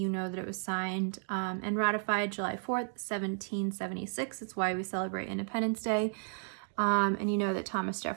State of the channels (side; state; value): left; silent; digital silence